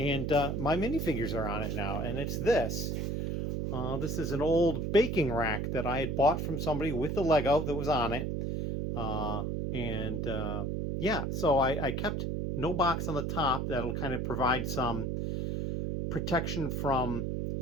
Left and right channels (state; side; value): noise; right; hum, 1 dB below the sound